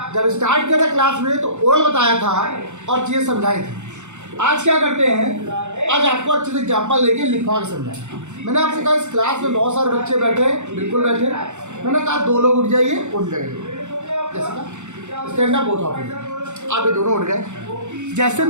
जब स्टार्ट किया था क्लास में तो ओल्ड बताया था और चीज़ें समझाई थी। आज क्या करते हैं, आज आपको अच्छे से एग्जाम्पल लेके लिखवा के समझाएं। मैंने आपसे कहा इस क्लास में बहुत सारे बच्चे बैठे, बिल्कुल बैठे। मैंने कहा 2 लोग उठ जाइए, उठ जाइए। जैसे का stand up both of you, आप ये दोनों उठ गए। जैसे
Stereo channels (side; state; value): left; late; 0.84 ms